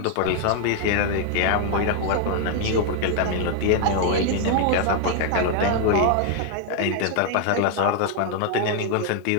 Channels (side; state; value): both; different; correlation 0.00